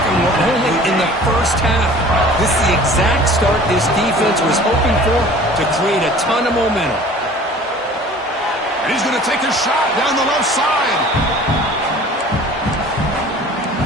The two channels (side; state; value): both; normal; correlation 0.46